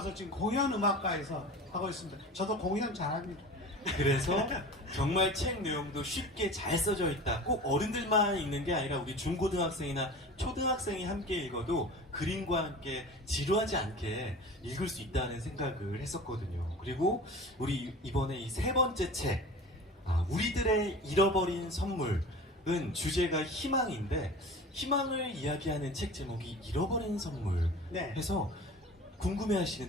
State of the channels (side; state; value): both; normal; correlation 0.37